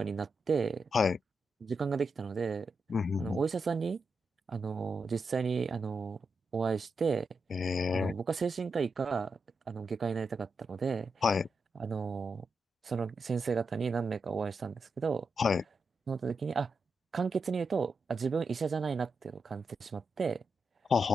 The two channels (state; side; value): normal; both; correlation 0.86